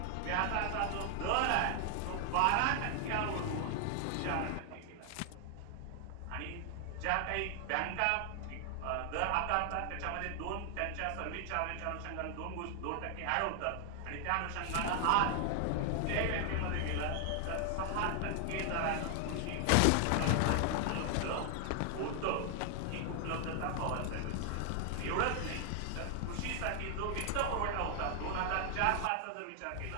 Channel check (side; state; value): both; different; correlation 0.00